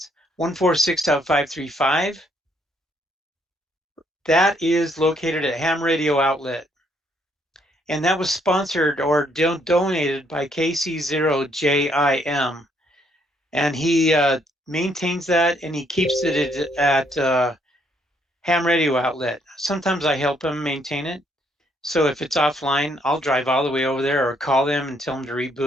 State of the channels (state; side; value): normal; both; correlation 0.70